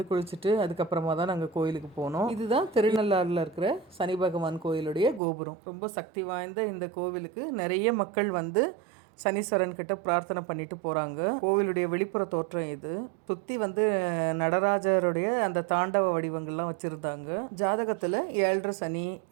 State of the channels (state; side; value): drops out; left; at 5.2 s